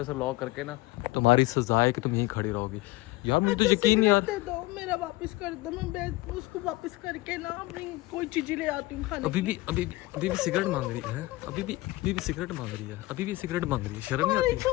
से लॉक करके ना, तुम्हारी सजा है कि तुम यहीं खड़ी रहोगी। यार मुझे तो यकीन नहीं यार। दे दो, मेरा वापस कर दो। मैं उसको वापस करके ना अपनी कोई चीजें ले आती हूँ खाने। अभी भी सिगरेट मांग रही है। अभी भी सिगरेट मांग रही है। अभी भी सिगरेट मांग रही है। शर्म नहीं आती?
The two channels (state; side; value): quieter; right; 19.9 dB